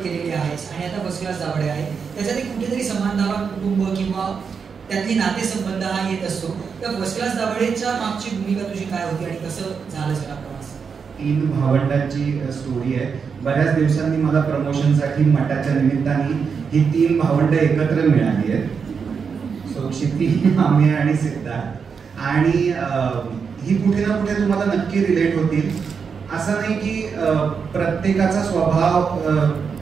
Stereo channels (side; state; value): left; quieter; 6.0 dB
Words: केलेले आहेस आणि आता फर्स्ट क्लास दाभाडे आहे, त्याच्यात कुठेतरी समानधावा कुटुंब किंवा त्यातली नातेसंबंध हा येत असतो. तर फर्स्ट क्लास दाभाडेच्या मागची भूमिका तुझी काय होती आणि कसं झालं सगळा प्रवास? 3 भावंडांची स्टोरी आहे. बऱ्याच दिवसांनी मला प्रमोशनसाठी मठाच्या निमित्ताने ही 3 भावंड एकत्र मिळाली आहेत. सो क्षिती, आम्ही आणि सिद्धार्थ. आणि ही कुठे ना कुठे तुम्हाला नक्की रिलेट होतील. असं नाही की प्रत्येकाचा स्वभाव